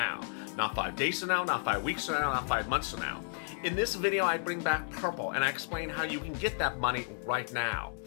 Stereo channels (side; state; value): right; silent; 56 dB below the other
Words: Not 5 days from now, not 5 weeks from now, not 5 months from now. In this video, I bring back Purple and I explain how you can get that money right now.